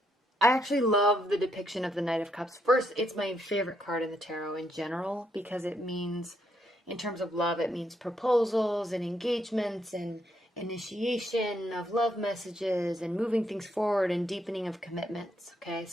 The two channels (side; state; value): both; normal; correlation 0.75